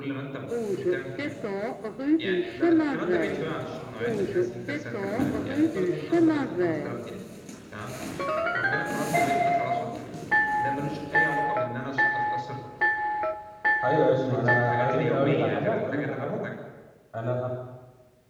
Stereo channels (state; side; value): identical; both; correlation 1.00